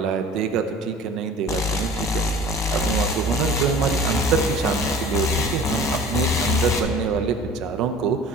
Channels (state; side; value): normal; both; correlation 0.44